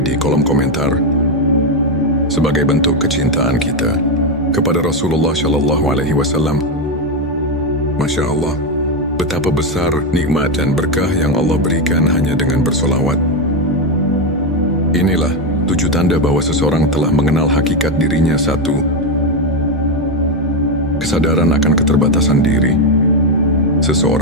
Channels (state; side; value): normal; both; correlation 0.07